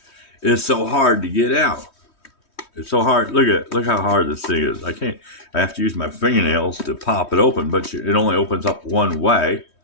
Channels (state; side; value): late; right; 3.2 ms